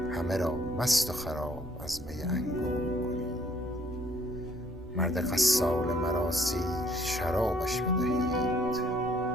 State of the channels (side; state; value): both; normal; correlation 0.63